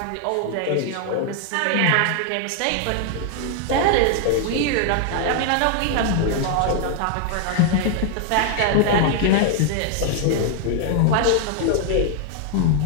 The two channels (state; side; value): different; both; correlation 0.00